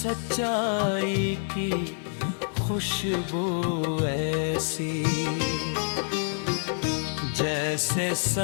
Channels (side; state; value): right; silent; digital silence